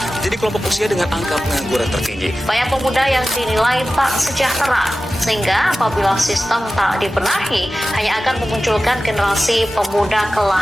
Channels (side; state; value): both; normal; correlation 0.95